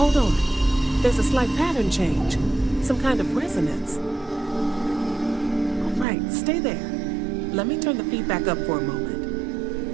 on. There's a slight pattern change. Some kind of resonance. All right, stay there. Let me turn the feedback up for a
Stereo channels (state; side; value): drops out; left; at 6.1 s